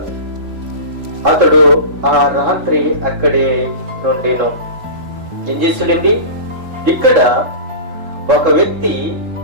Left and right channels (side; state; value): left; late; 3.3 ms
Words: అతడు ఆ రాత్రి అక్కడే నుండెను. ఏం చేశాడండి? ఇక్కడ ఒక వ్యక్తి